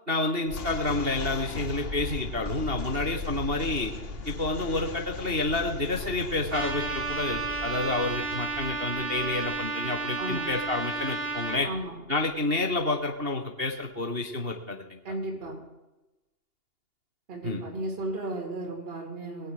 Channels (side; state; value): left; late; 2.8 ms